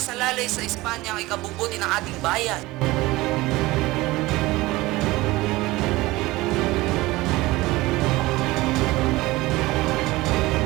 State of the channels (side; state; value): left; quieter; 19.8 dB